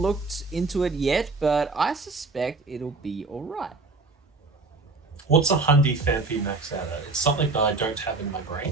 into it yet, but I suspect it'll be alright. What's a Hundy Phanpy max out at? It's something that I don't have in my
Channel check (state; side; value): quieter; left; 3.7 dB